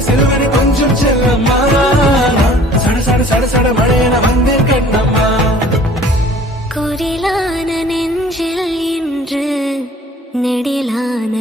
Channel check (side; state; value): both; normal; correlation 0.50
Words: சிலுவன கொஞ்சம் செல்லம்மா சட சட சட சட மழையன வந்தேன் கண்ணம்மா குரிலான நெஞ்சில் இன்று நெடிலான